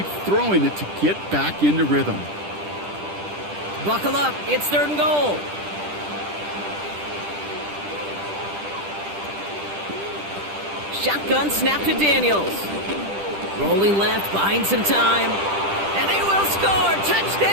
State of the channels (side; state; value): left; late; 10 ms